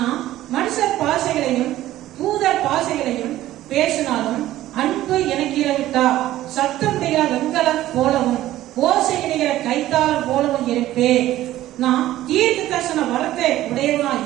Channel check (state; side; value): quieter; left; 14.5 dB